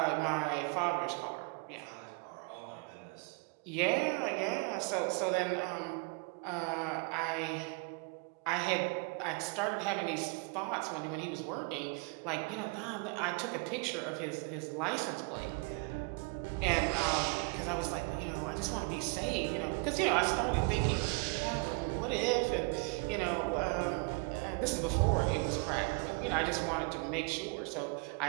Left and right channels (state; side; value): quieter; left; 31.1 dB